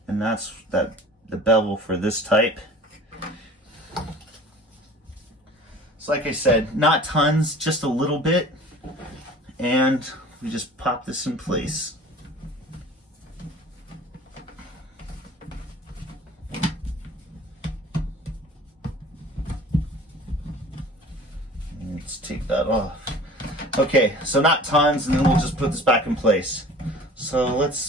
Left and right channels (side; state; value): both; normal; correlation 0.45